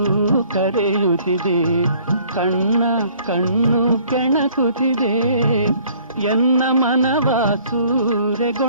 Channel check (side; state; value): both; inverted; correlation -0.57